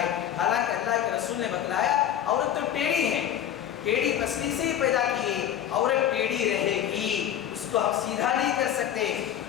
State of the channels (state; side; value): quieter; right; 10.4 dB